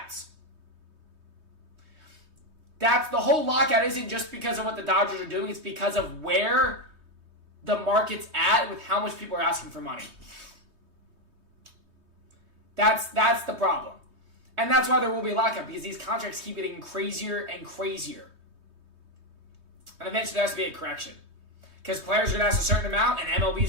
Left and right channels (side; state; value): left; late; 3.2 ms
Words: That's the whole lockout isn't just because of what the Dodgers are doing, it's because of where the market's at with how much people are asking for money. That's the problem. And that's why there will be a lockout, because these contracts keep getting crazier and crazier. And eventually there has to be a correction. Because players are going to ask a certain amount, and